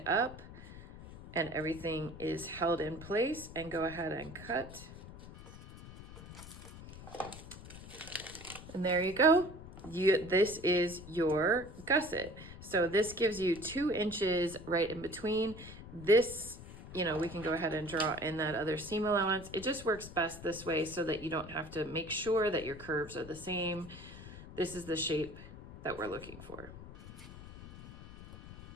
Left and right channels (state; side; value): noise; left; rumble, 15 dB below the sound